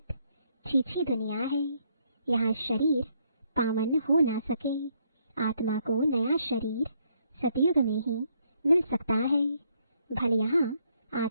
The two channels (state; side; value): inverted; both; correlation -0.72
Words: छीछी दुनिया है। यहाँ शरीर पावन हो ना सके। आत्मा को नया शरीर सतयुग में ही मिल सकता है। भले यहाँ